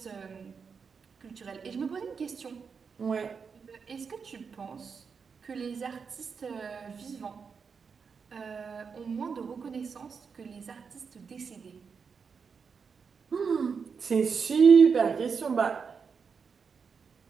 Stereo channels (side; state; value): left; quieter; 5.8 dB